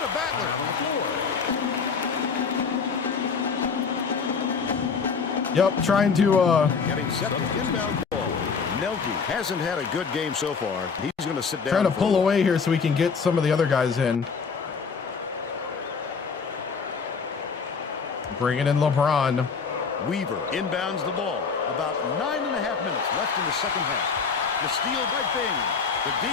a battler on the floor. Yep, trying to Getting set on the inbound ball. Nelke hasn't had a good game so far. He's going to sit down. trying to pull away here so we can get some of the other guys in. Bringing in LeBron. Weaver inbounds the ball. About 9.5 minutes left in the second half. The steal by Bing. The D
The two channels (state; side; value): quieter; right; 5.5 dB